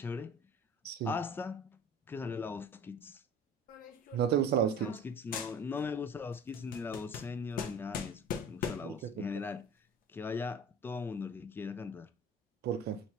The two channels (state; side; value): normal; both; correlation 0.42